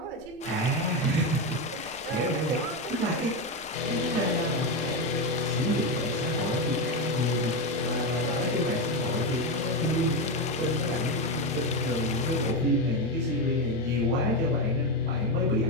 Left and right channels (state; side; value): noise; right; rumble, 25 dB below the sound